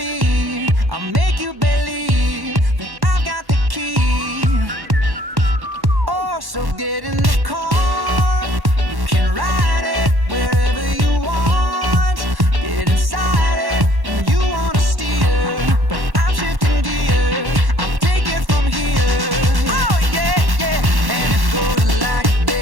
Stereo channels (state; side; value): late; left; 1.1 ms